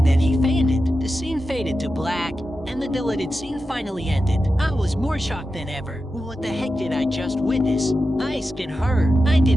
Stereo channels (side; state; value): both; normal; correlation 0.91